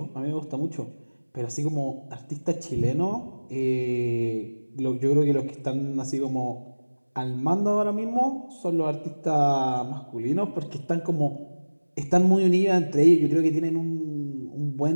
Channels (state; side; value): inverted; both; correlation -1.00